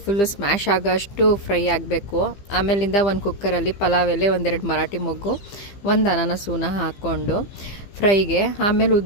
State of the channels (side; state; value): right; late; 15 ms